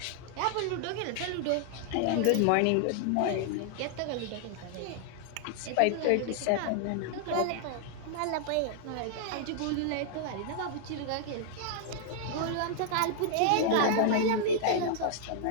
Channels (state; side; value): different; both; correlation 0.00